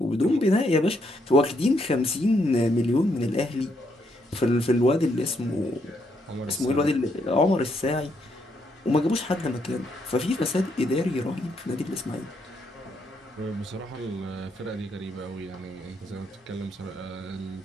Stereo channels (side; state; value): both; normal; correlation 0.75